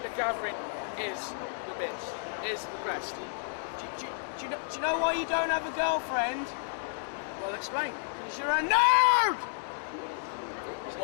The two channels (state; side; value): silent; right; digital silence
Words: the Gathering is the best. Is the best. Do you know why you don't have a girlfriend? Well, explain. Because you're a nerd.